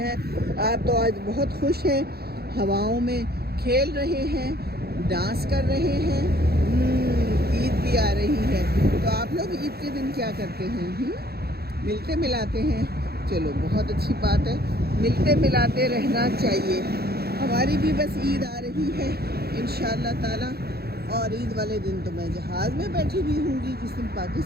आप तो आज बहुत खुश हैं, हवाओं में खेल रहे हैं, डांस कर रहे हैं। ईद भी आ रही है, तो आप लोग ईद के दिन क्या करते हैं? मिलते मिलाते हैं। चलो बहुत अच्छी बात है, मिलते मिलाते रहना चाहिए। हमारी भी बस ईद आ रही है इंशाअल्लाह ताला, और ईद वाले दिन तो मैं जहाज़ में बैठी हुई हूँगी। जिस दिन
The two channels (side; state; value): left; late; 0.46 ms